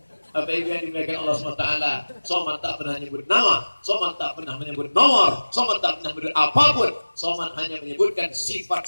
Apa itu yang dimuliakan Allah SWT? Somad tak pernah menyebut nama, Somad tak pernah menyebut nomor, Somad tak pernah menyebut apapun. Somad hanya menyebutkan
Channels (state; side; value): inverted; both; correlation -1.00